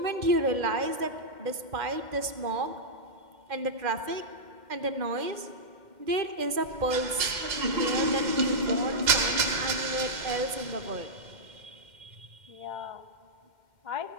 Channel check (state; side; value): late; left; 2.1 ms